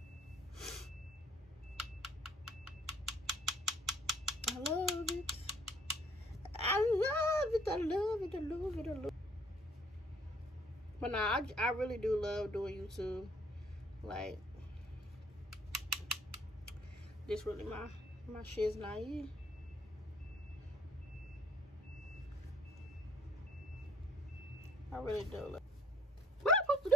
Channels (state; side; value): normal; both; correlation 0.60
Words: I love it. I love it. I love it. I love it. I love it. But nah, I really do love doing YouTube. Like, this really my shit's naive. I really do love. What am I supposed to